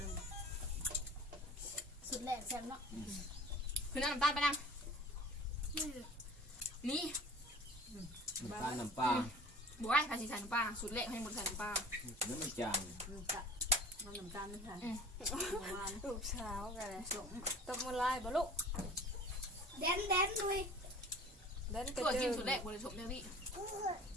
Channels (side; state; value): both; normal; correlation 0.43